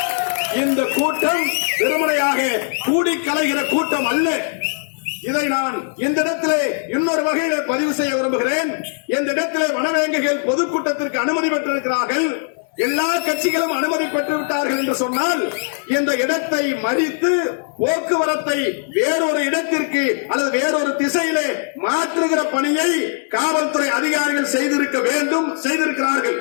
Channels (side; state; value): right; silent; digital silence